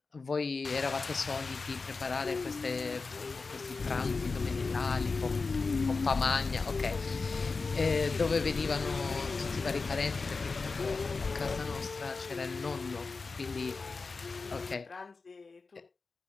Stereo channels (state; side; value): quieter; right; 4.2 dB